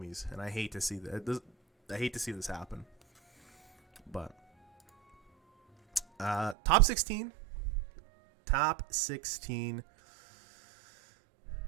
and I hate to see that. I hate to see this happen. But top 16.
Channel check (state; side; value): drops out; left; at 6.6 s